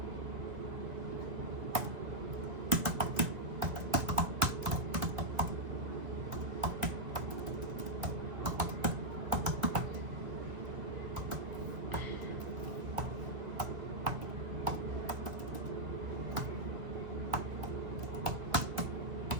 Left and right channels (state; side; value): late; left; 2.1 ms